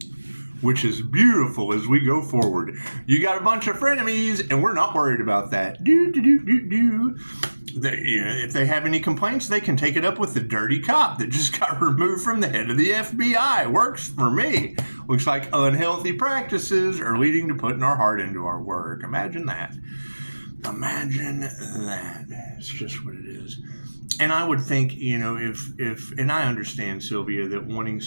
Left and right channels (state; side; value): inverted; both; correlation -1.00